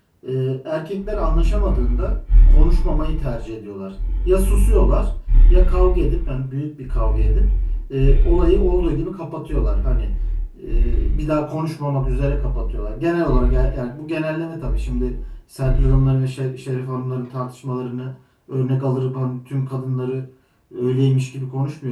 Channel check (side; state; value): both; identical; correlation 1.00